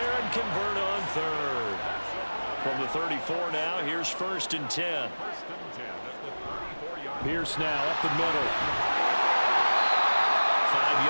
and convert on 3rd. From the 34 now, here's 1st and 10. Pierce now up the middle. 5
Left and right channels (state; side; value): inverted; both; correlation -1.00